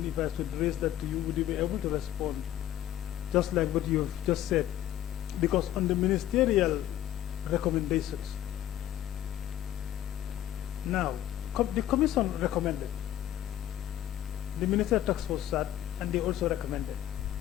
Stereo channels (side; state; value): right; quieter; 12.5 dB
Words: if I should raise that to you, would you be able to respond just like what you've just said? Because on the ministerial recommendations, now, the commission recommended. The ministerial task force sat and they also recommended.